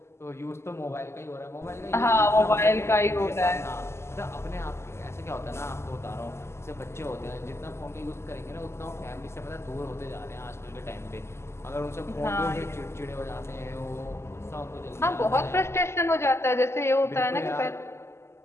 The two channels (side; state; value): right; late; 0.13 ms